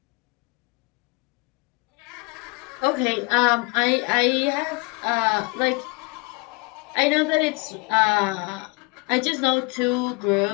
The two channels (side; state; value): right; quieter; 28.1 dB